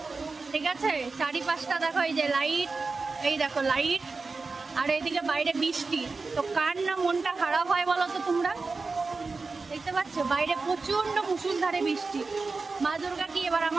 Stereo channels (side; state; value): left; quieter; 4.1 dB